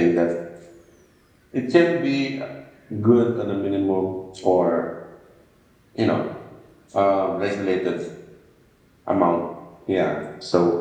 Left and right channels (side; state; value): both; identical; correlation 1.00